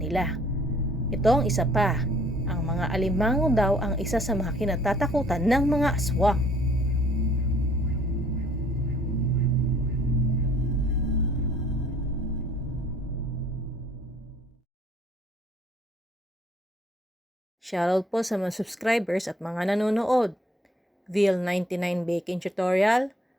Ito ang isa pa. Ang mga alimango daw ang isa sa mga kinatatakutan ng mga aswang. Shoutout po sa mga subscribers at mga nanonood. Vil99 Baking Tutorial,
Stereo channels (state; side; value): normal; both; correlation 0.59